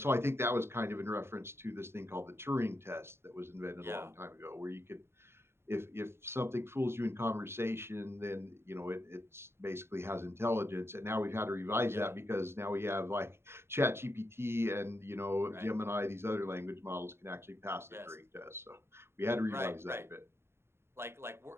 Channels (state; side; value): late; left; 0.12 ms